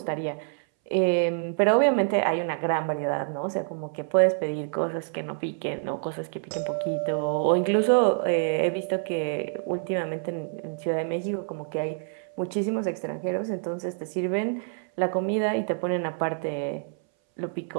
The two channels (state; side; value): silent; left; 60 dB below the other